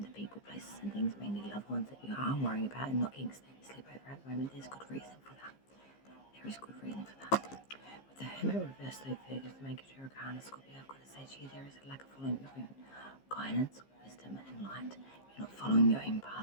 the people, places and things, mainly loved ones, that you are worrying about and not getting steady sleep over at the moment. There's good reason for that. There is good reason for that. With the Hermit reverse, though, figures the Mecury Arcana, Scorpio, I've got to say to you, there is a lack of following your own guidance, wisdom and light. You're not following your own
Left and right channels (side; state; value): right; late; 15 ms